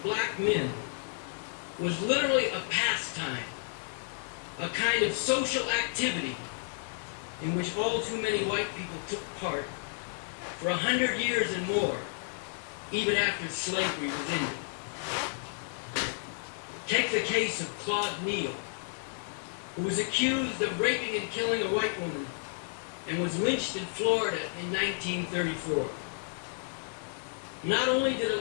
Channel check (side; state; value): right; silent; digital silence